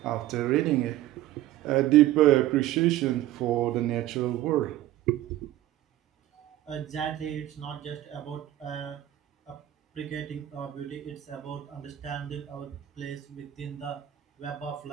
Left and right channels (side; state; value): left; quieter; 14.1 dB